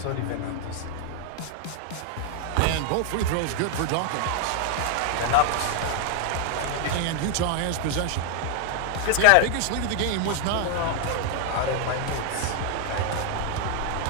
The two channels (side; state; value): both; different; correlation 0.00